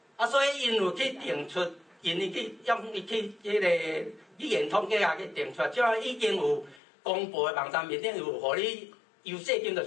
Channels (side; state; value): right; drops out; at 6.8 s